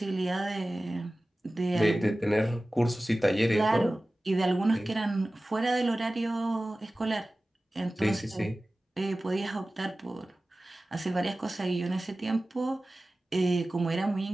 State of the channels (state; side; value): normal; both; correlation 0.96